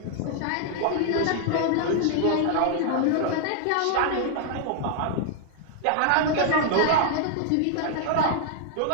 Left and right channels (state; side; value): different; both; correlation 0.00